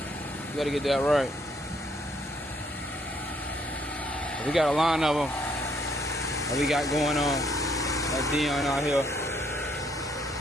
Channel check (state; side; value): normal; both; correlation 0.69